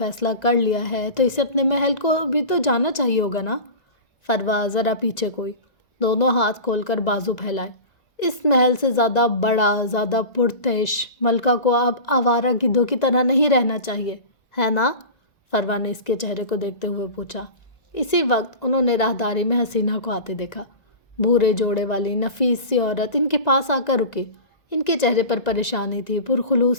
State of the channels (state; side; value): late; right; 1.9 ms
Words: کر لیا ہے تو اسے اپنے محل کو بھی تو جانا چاہیے ہوگا نا۔ فروا ذرا پیچھے کوئی، دونوں ہاتھ کھول کر بازو پھیلائے۔ اس محل سے زیادہ بڑا، زیادہ پرتعش ملکہ کو اب آوارہ گدھوں کی طرح نہیں رہنا چاہیے، ہے نا؟ فروا نے اس کے چہرے کو دیکھتے ہوئے پوچھا۔ اسی وقت انہوں نے راہداری میں حسینہ کو آتے دیکھا۔ بھورے جوڑے والی نفیس سی عورت ان کے پاس آ کر رکی۔ ان کے چہرے پر پریشانی تھی، پرخلوص